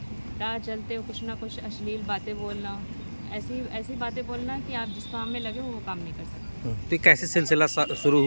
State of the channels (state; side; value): inverted; both; correlation -1.00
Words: राह चलते कुछ ना कुछ अश्लील बातें बोलना, ऐसी ऐसी बातें बोलना कि आप जिस काम में लगे हो वो काम नहीं कर सकते। तो ये कैसे सिलसिला शुरू